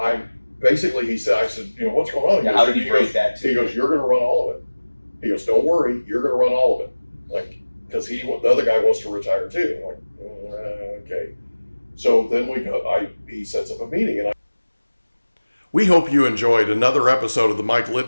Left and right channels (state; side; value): inverted; both; correlation -1.00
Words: said, you know, what's going on? Yeah, how did he break that to He goes, you're going to run all of it. He goes, don't worry, you're going to run all of it. Like, because the other guy wants to retire too. I'm like, okay. So then he sets up a meeting, and we hope you enjoyed another episode of the Mike